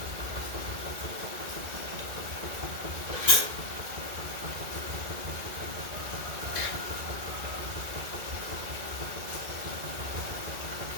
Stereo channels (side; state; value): left; late; 2.2 ms